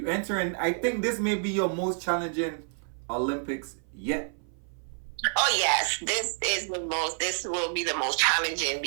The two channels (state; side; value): silent; left; 56 dB below the other